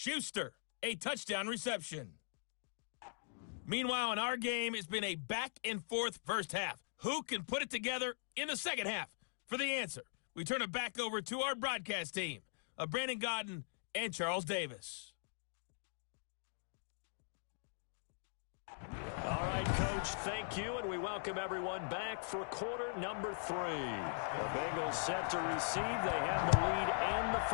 a touchdown reception. Meanwhile, in our game, it's been a back-and-forth first half. Who can put it together in the second half? For the answer, we turn it back over to our broadcast team of Brandon Godden and Charles Davis. All right, Coach, thank you, and we welcome everyone back for quarter number 3. The Bengals set to receive. They have the lead and the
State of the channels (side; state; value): right; silent; digital silence